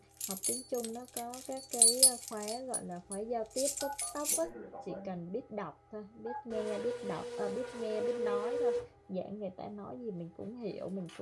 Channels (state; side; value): identical; both; correlation 1.00